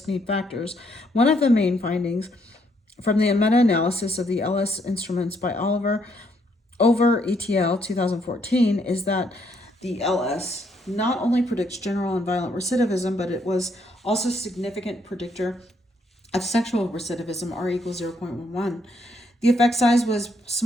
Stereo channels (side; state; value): both; normal; correlation 0.72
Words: need factors. One of the main findings from the meta-analysis of the LS instruments by Oliver over ETL 2014 is that the LS not only predicts general and violent recidivism, but it was also a significant predictor of sexual recidivism, R equals 0.11. The effect size was